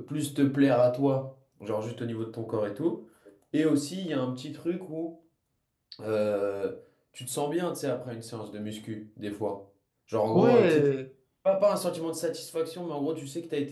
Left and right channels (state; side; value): identical; both; correlation 1.00